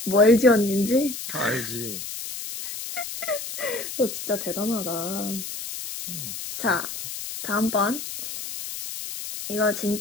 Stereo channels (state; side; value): noise; left; hiss, 8 dB below the sound